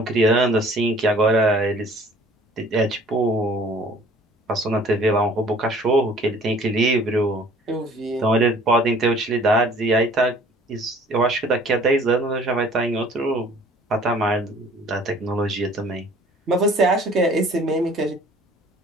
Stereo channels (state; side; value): normal; both; correlation 0.52